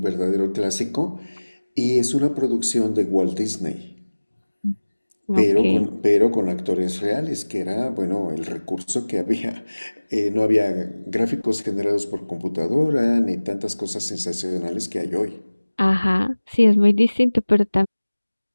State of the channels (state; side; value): inverted; both; correlation -1.00